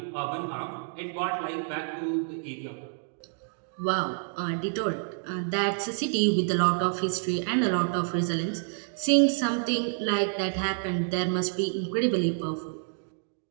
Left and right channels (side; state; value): left; silent; digital silence